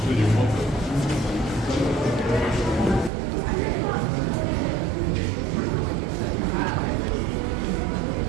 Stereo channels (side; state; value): left; drops out; at 3.1 s